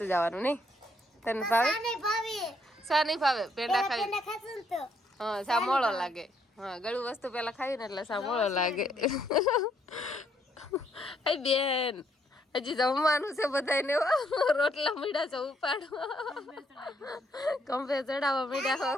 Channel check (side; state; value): both; normal; correlation 0.71